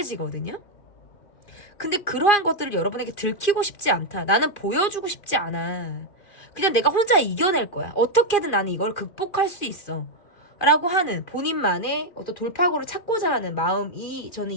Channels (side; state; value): right; late; 2.4 ms